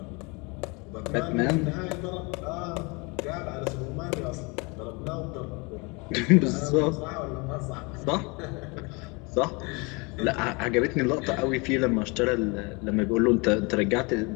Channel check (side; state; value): right; quieter; 29.0 dB